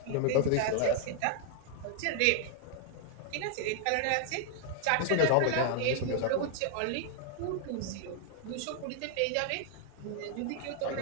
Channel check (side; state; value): both; different; correlation 0.00